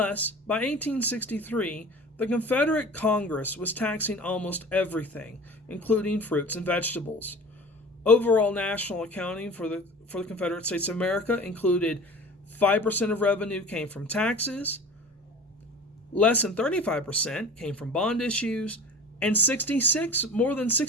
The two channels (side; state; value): both; normal; correlation 0.40